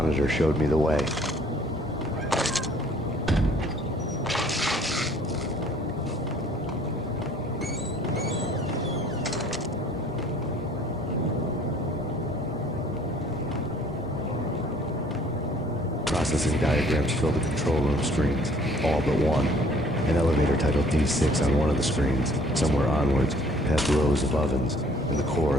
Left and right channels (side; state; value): both; normal; correlation 0.57